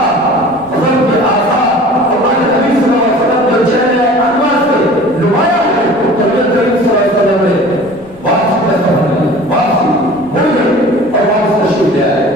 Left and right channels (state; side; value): noise; right; rumble, 24 dB below the sound